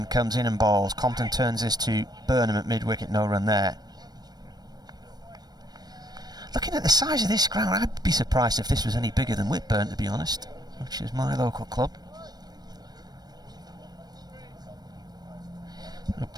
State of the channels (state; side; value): late; left; 0.19 ms